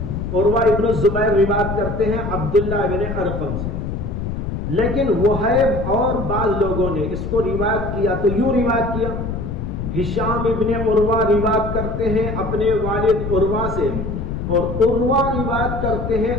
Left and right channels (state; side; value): noise; left; rumble, 4 dB below the sound